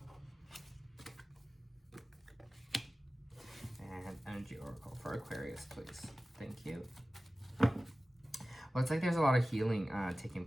Energy Oracle for Aquarius, please. Thank you. Well, it's like there's a lot of healing taking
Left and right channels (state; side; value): normal; both; correlation 0.96